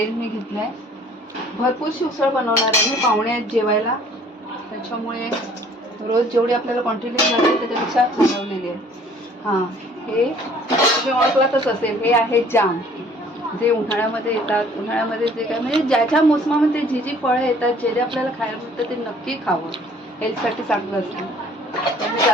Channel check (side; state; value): both; normal; correlation 0.55